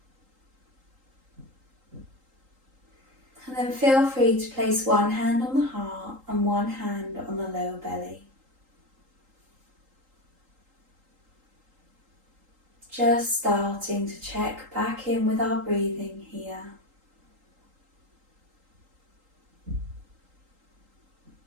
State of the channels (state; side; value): late; left; 3.8 ms